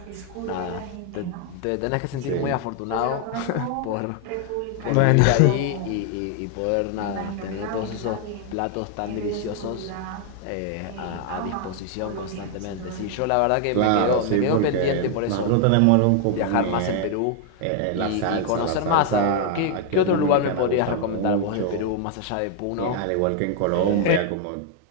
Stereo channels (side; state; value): both; different; correlation 0.00